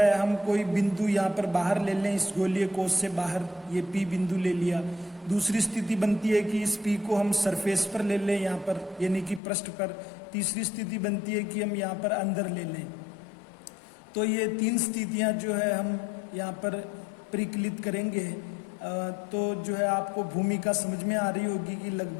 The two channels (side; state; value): right; drops out; at 9.4 s